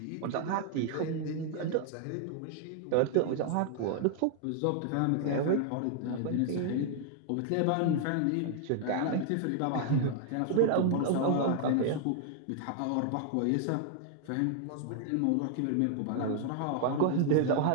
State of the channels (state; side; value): different; both; correlation 0.00